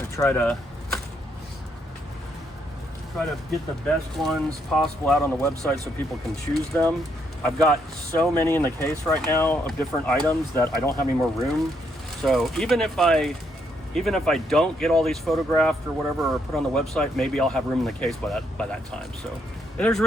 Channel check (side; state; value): both; normal; correlation 0.74